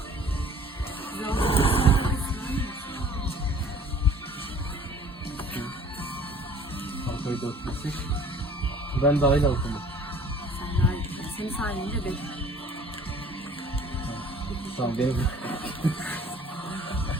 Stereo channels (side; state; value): both; normal; correlation 0.51